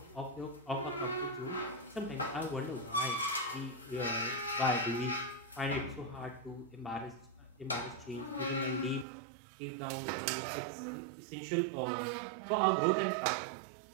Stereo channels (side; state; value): left; drops out; at 9.1 s